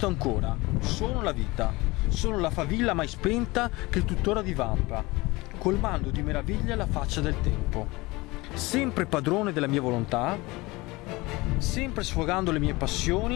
ancora. Sono la vita, sono la favilla mai spenta che tuttora divampa, colmando di meraviglia la faccia del tempo. Sempre padrone della mia volontà, sempre sfogando le mie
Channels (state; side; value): quieter; right; 22.2 dB